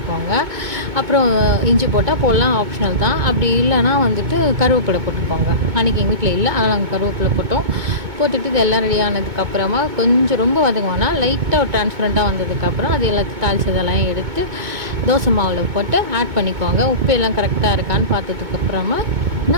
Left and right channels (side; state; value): left; late; 2.2 ms